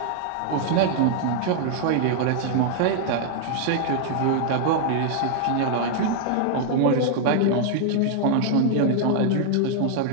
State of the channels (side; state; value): both; different; correlation 0.00